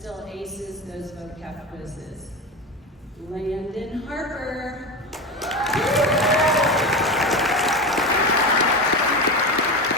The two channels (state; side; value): normal; both; correlation 0.22